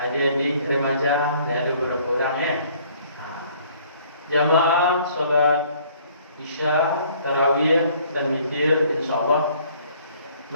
remaja, dan ada beberapa orang ya. Jamaah salat Isya, Tarawih dan Witir, insyaallah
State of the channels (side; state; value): both; inverted; correlation -0.59